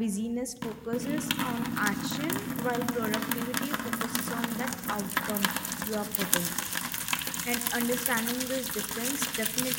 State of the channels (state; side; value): identical; both; correlation 1.00